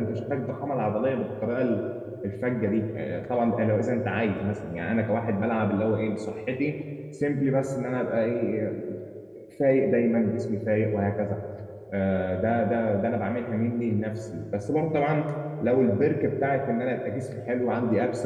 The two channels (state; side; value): identical; both; correlation 1.00